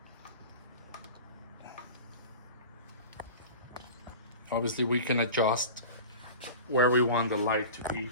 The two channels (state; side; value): inverted; both; correlation -0.35